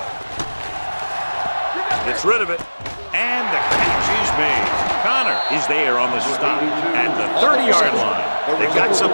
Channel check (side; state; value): both; inverted; correlation -1.00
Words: Gets rid of it. And the catch is made. Connor is there on the stop at the 30-yard line. They've got